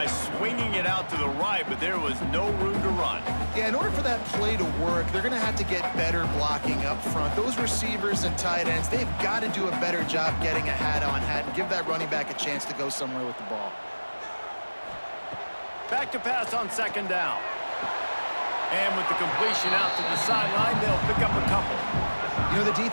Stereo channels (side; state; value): both; inverted; correlation -1.00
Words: swinging it out to the right, but there was no room to run. Yeah, in order for that play to work, they're going to have to get better blocking up front. Those receivers and tight ends, they've got to do a better job getting a hat-on-hat and give that running back a chance to go somewhere with the ball. Back to pass on 2nd down. And with the completion out to the sideline, they'll pick up a couple. You know, the